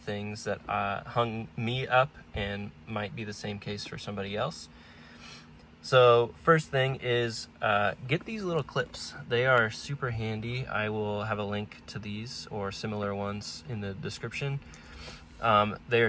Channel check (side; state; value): both; identical; correlation 1.00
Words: that hung me up and might be the same case for somebody else. So first thing is get these little clips. They are super handy. I will have a link to these or similar ones in the description. They